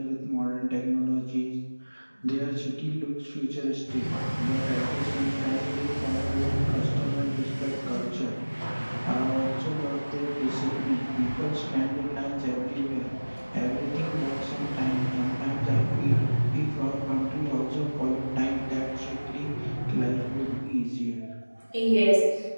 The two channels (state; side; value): inverted; both; correlation -1.00